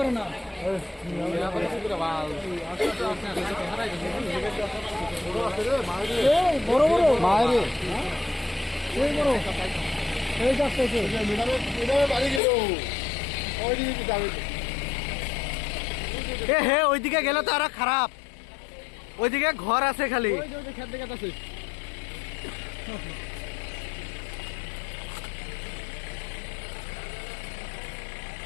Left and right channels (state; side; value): drops out; right; at 12.4 s